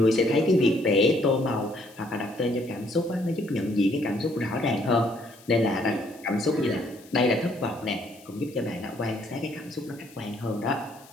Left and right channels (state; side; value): noise; left; hiss, 24 dB below the sound